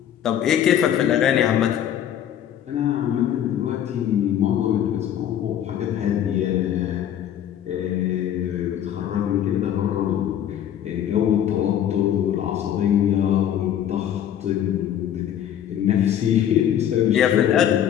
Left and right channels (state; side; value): quieter; right; 10.3 dB